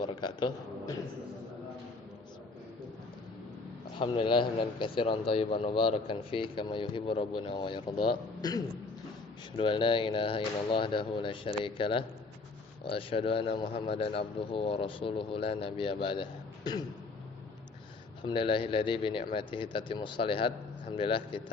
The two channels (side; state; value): right; quieter; 3.7 dB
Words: Alhamdulillah hamdan katsiran thayyiban mubarakan fi kama yuhibbu rabbuna wa yarda. Asyhadu an la ilaha illallah wahdahu la syarika lah wa asyhadu anna Muhammadan abduhu wa rasuluhu la nabiyya ba'dah. Alhamdulillahilladzi bi ni'matihi tatimmus shalihat. Alhamdulillah